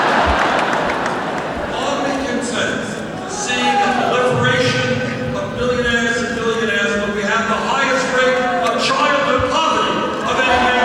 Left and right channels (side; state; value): both; identical; correlation 1.00